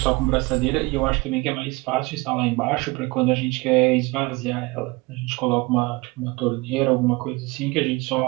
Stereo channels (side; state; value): left; quieter; 24.4 dB